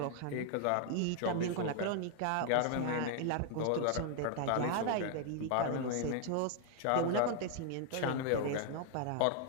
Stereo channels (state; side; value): different; both; correlation 0.00